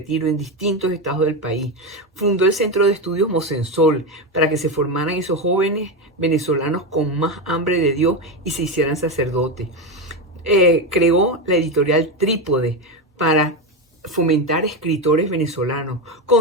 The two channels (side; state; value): both; normal; correlation 0.14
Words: en distintos estados del país. Fundó el Centro de Estudios Mosensol para que se formaran esos jóvenes venezolanos con más hambre de Dios y se hicieran sacerdotes. Creó la editorial Trípode para fomentar escritores venezolanos.